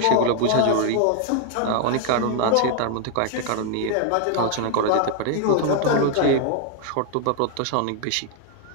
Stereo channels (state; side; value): different; both; correlation 0.00